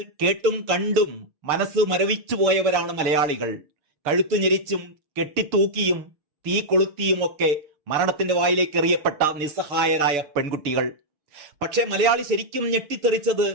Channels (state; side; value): late; left; 7.0 ms